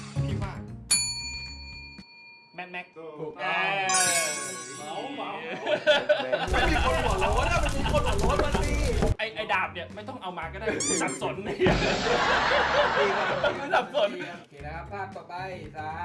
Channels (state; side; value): identical; both; correlation 1.00